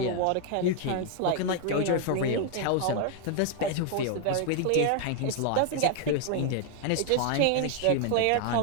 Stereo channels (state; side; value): different; both; correlation 0.00